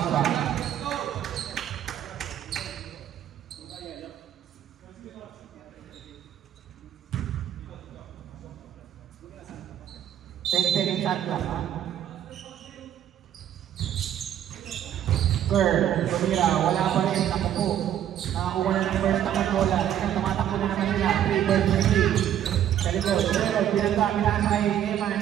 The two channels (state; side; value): quieter; left; 10.7 dB